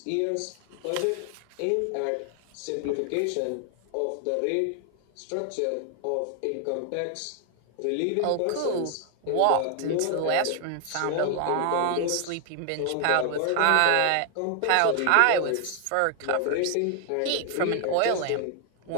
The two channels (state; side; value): different; both; correlation 0.00